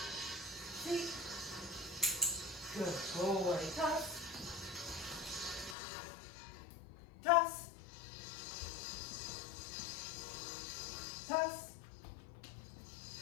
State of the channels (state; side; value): drops out; right; at 5.8 s